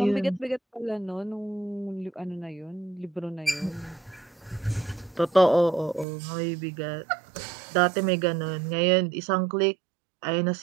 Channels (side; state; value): left; drops out; at 6.1 s